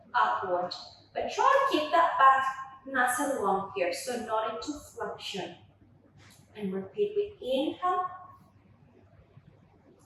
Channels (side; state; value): both; identical; correlation 1.00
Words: upward. But try to keep that back nice and long here, so not into flexion. And repeat with inhale